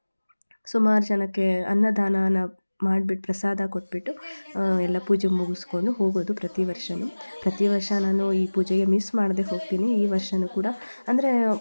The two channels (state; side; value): inverted; both; correlation -1.00